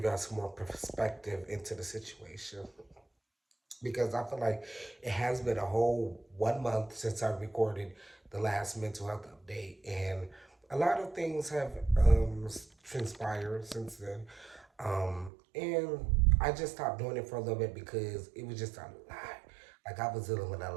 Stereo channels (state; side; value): drops out; left; at 15.3 s